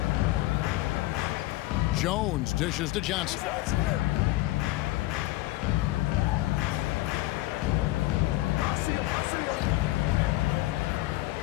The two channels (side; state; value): right; quieter; 18.4 dB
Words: Jones dishes to Johnson.